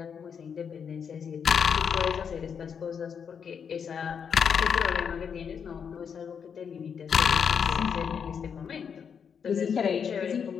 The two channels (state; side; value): quieter; right; 7.0 dB